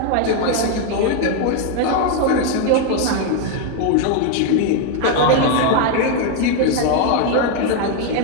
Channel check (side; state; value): both; different; correlation 0.01